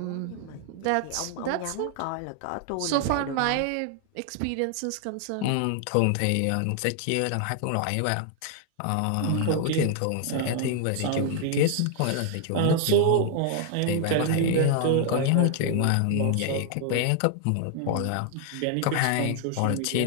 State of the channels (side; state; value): both; different; correlation 0.00